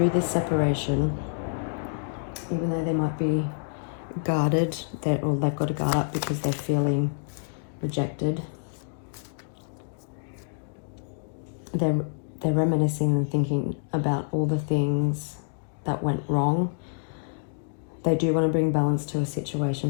this separation, even though they might be guarded, or they've got to guard up because they're feeling rejected, they're reminiscing and thinking about all the things that went wrong. They do want to bring balance to a situation,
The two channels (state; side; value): silent; right; digital silence